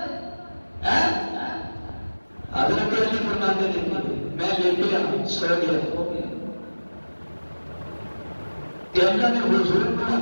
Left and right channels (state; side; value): inverted; both; correlation -1.00